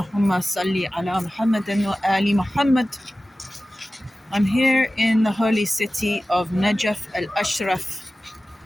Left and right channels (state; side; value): normal; both; correlation 0.96